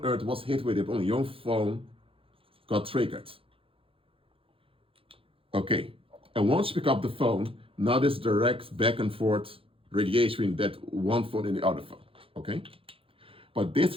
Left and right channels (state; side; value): late; left; 0.27 ms